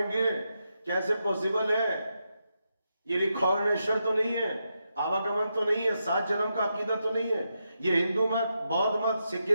گے, کیسے پوسیبل ہے, یہ ریکارنیشن تو نہیں ہے, آواگمن تو نہیں ہے, 7 جنم کا عقیدہ تو نہیں ہے, یہ ہندو مت, بودھ مت,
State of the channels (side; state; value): both; inverted; correlation -0.85